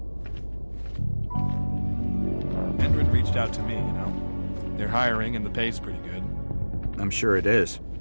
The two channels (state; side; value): inverted; both; correlation -1.00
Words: Endrin reached out to me, you know. They're hiring and the pay's pretty good. I'm sure it is.